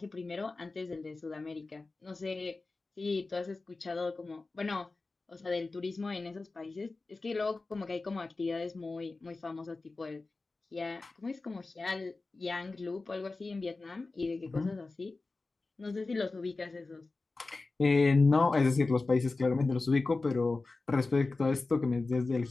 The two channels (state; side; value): quieter; right; 3.6 dB